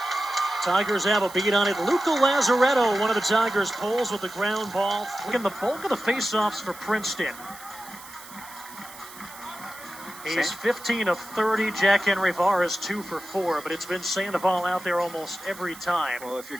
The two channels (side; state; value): right; noise; hiss, 17 dB below the sound